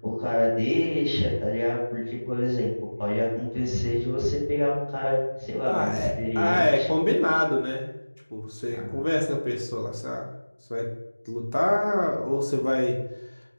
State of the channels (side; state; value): both; inverted; correlation -1.00